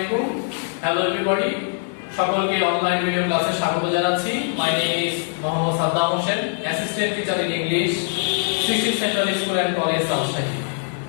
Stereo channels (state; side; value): silent; right; digital silence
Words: Hello everybody, সকলকে অনলাইন ভিডিও ক্লাসে স্বাগত জানাচ্ছি। My name is Mohammad Saddam Hossain, assistant teacher in English, Shri central school and college Rajshahi.